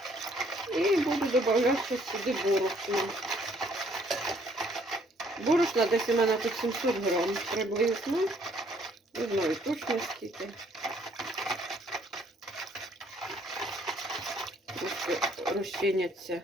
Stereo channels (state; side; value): normal; both; correlation 0.64